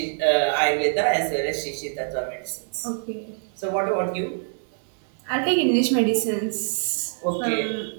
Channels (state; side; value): silent; left; 62 dB below the other